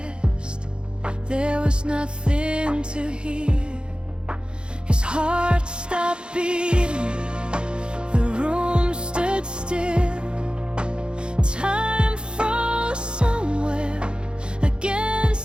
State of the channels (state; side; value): late; left; 0.052 ms